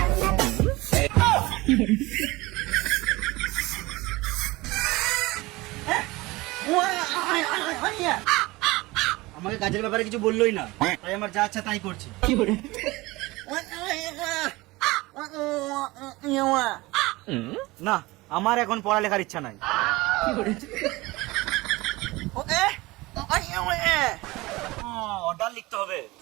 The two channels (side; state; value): left; quieter; 21.3 dB